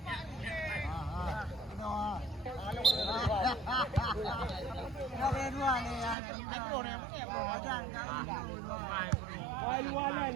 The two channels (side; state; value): left; drops out; at 6.2 s